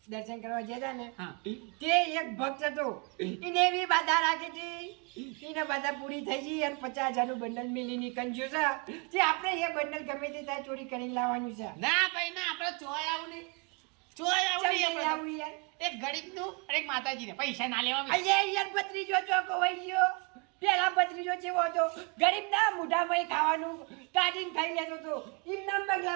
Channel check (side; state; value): left; quieter; 32.4 dB